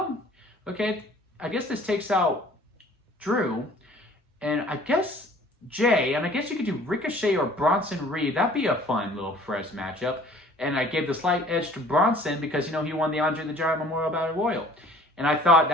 okay, I guess this takes out Drew, and I guess Jay, and I guess you could do Ricochet or Bronson Reed. That'd be a fun little fresh matchup. And I gave the slight edge to Bronson because, he won the Andre the Giant Memorial Battle Royal. And I thought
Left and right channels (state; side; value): normal; both; correlation 0.51